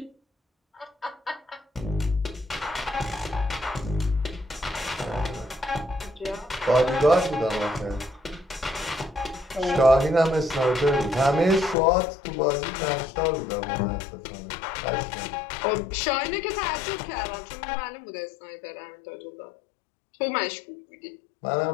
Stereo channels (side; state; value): right; drops out; at 11.8 s